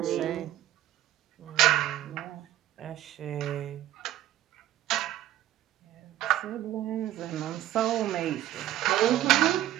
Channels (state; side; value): quieter; left; 13.4 dB